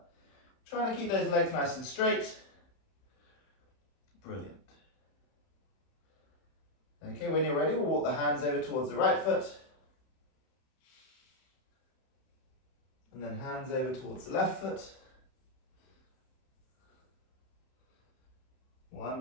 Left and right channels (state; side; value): late; right; 31 ms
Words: Trying to keep those legs nice and straight. Brilliant. Okay, when you're ready, we'll walk the hands over towards the right foot. And then hands over towards the left foot.